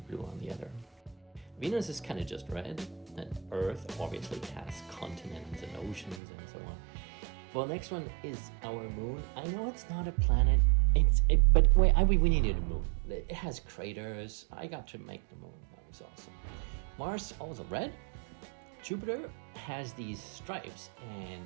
blue on the other. Venus is kind of just red, and Earth obviously has continents and oceans and so on. Well, next one is our moon. I know it's not a planet, but wait, we needed a moon. It has craters. I got to make the moon. That was awesome. Mars, also red. Jupiter has these stripes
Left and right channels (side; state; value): left; drops out; at 6.2 s